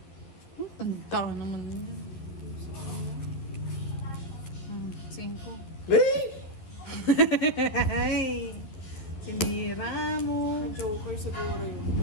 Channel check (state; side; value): late; right; 11 ms